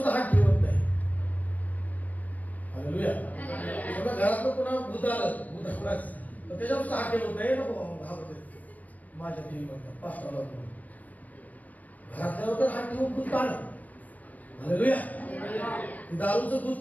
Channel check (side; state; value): right; late; 0.076 ms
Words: हात ठेवत नाही. हालेलुया. सगळं घरात पुन्हा भूत आलं, भूत आलाच तर त्याच्यावर सुद्धा हात ठेवत नाही. नको घाबरते माझ्या टीव्ही म्हणतात पास्टरला घरातल्यावर तर हात ठेवून भूत काढ. हालेलुया. दारूचं